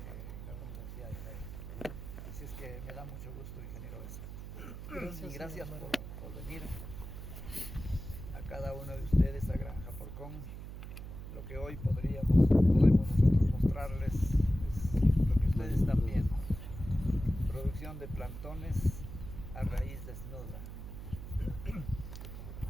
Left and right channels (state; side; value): noise; right; hum, 10 dB below the sound